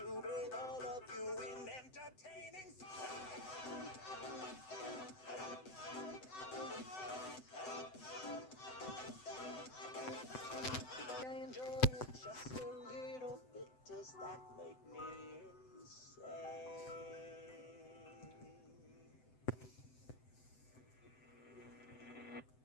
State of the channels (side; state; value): right; late; 7.9 ms